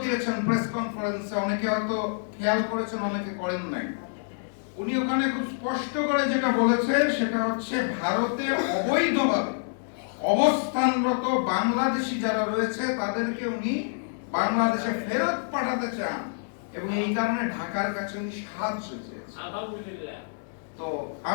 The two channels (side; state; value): right; silent; digital silence